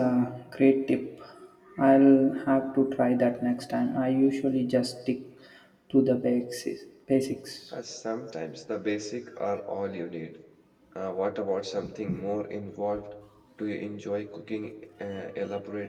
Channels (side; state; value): both; identical; correlation 1.00